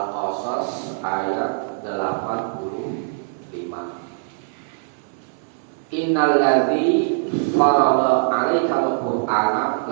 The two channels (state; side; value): silent; left; digital silence